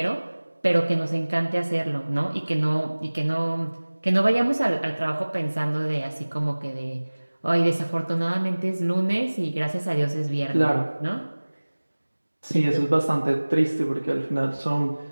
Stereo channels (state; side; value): inverted; both; correlation -1.00